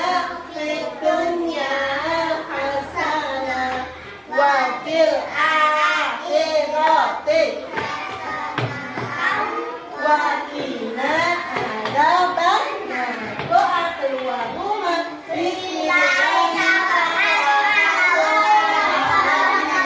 fid dunya hasanah wa fil akhirati wa qina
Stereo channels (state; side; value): identical; both; correlation 1.00